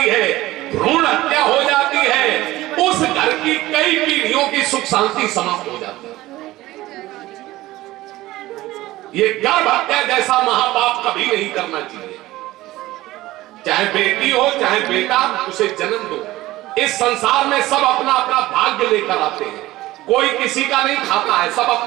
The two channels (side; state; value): left; quieter; 17.3 dB